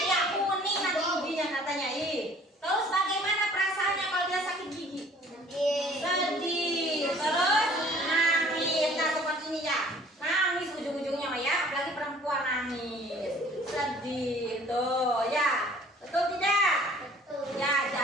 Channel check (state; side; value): normal; both; correlation 0.53